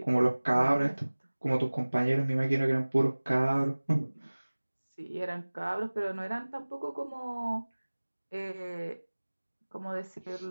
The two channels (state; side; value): inverted; both; correlation -1.00